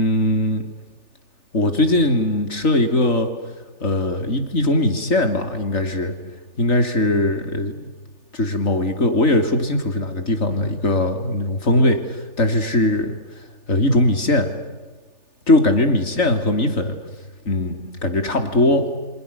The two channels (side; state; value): right; late; 3.4 ms